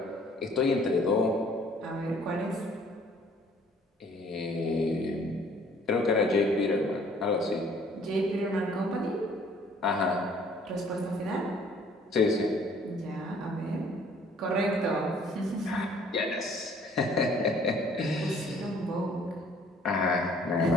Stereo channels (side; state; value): both; normal; correlation 0.58